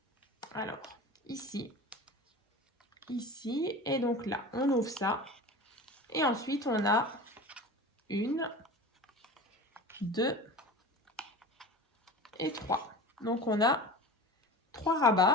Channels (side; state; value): both; normal; correlation 0.34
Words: Alors, ici, et donc là, on ouvre ça. Et ensuite, on a 1, 2 et 3. Donc, on a 3